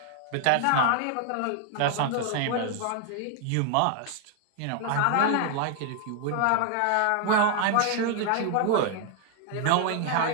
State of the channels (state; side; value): different; both; correlation 0.00